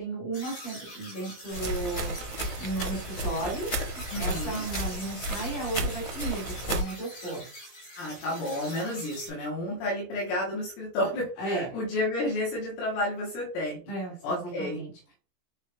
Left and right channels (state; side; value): late; right; 17 ms